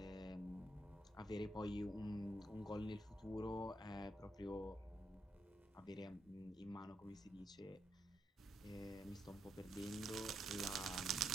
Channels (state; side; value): normal; both; correlation 0.80